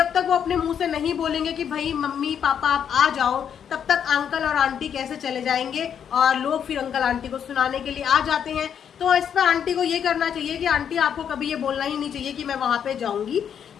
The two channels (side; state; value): right; quieter; 8.3 dB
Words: तक वो अपने मुंह से नहीं बोलेंगे कि भाई मम्मी पापा आप आ जाओ, तब तक अंकल और आंटी कैसे चले जाएंगे और लोग फिर अंकल आंटी को सुनाने के लिए आ जाते हैं। तो इस पर आंटी को ये करना चाहिए कि आंटी आपको कभी ये बोलना ही नहीं चाहिए कि मैं वहां पे जाऊंगी।